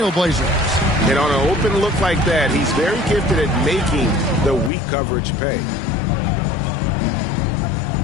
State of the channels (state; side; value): drops out; right; at 4.7 s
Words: And on an open look like that, he's very gifted at making the weak coverage pay.